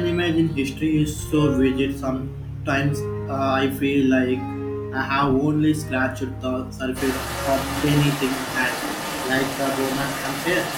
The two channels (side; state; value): both; identical; correlation 1.00